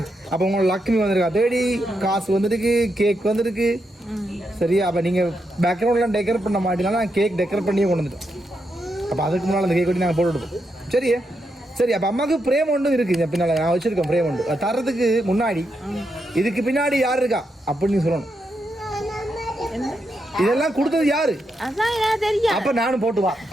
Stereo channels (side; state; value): both; normal; correlation 0.83